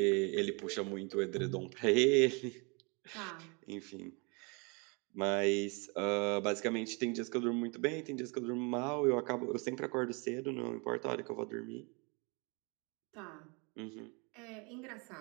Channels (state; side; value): quieter; left; 31.3 dB